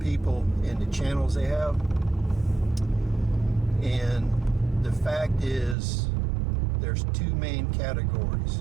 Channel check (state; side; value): drops out; left; at 5.8 s